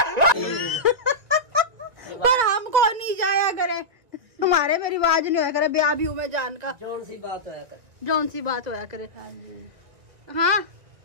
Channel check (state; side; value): late; left; 1.6 ms